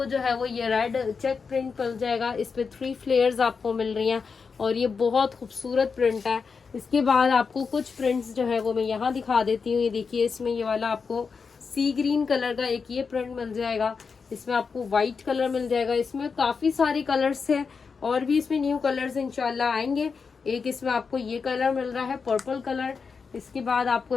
जो है वो ये रेड चेक प्रिंट मिल जाएगा। इस पे 3 फ्लेयर्स आपको मिल रही हैं और ये बहुत खूबसूरत प्रिंट है। इसके बाद आपको कुछ प्रिंट्स जो है वो मैं यहाँ दिखा देती हूँ। ये देखिए इसमें ये वाला आपको सी ग्रीन कलर का एक ये प्रिंट मिल जाएगा। इसमें आपको वाइट कलर मिल जाएगा। इसमें काफ़ी सारे कलर्स हैं और भी इसमें न्यू कलर्स इंशाल्लाह आएंगे। एक इसमें आपको ये कलर मिल रहा है पर्पल कलर। इसके बाद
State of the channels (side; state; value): right; quieter; 5.3 dB